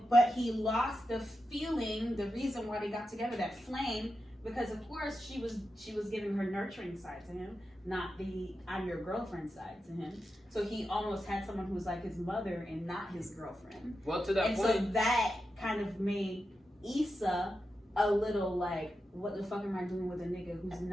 but he lost the feeling, the reason why they got together, that flame, because of course she was giving her nurturing side to him, not the I'm your girlfriend side to him. So he almost had someone who was like his mother and not his girlfriend. Well, to that And point, so that kind of made Issa a little like, what the fuck am I doing with a nigga who's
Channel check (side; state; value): both; normal; correlation 0.89